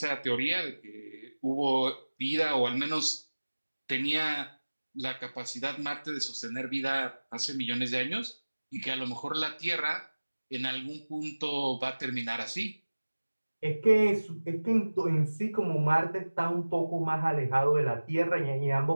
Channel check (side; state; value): both; inverted; correlation -1.00